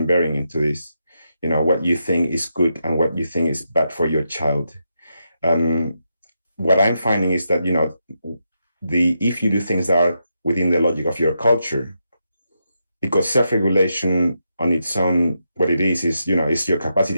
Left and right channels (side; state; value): both; inverted; correlation -0.84